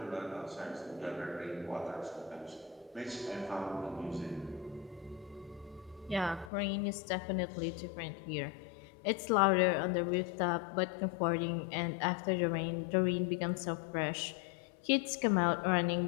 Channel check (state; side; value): drops out; right; at 6.5 s